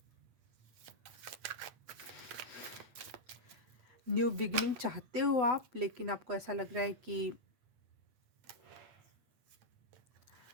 New beginning चाहते हो आप, लेकिन आपको ऐसा लग रहा है कि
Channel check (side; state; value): left; late; 8.0 ms